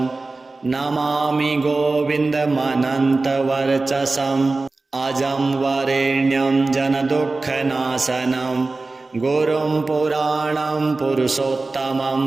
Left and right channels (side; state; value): left; quieter; 3.5 dB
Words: नमामि गोविन्दमनन्तवर्चसम् अजं वरेण्यं जनदुःखनाशनं गुरुं पुराणं पुरुषोत्तमं